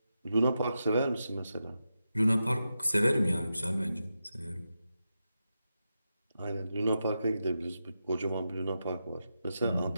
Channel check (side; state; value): both; inverted; correlation -0.88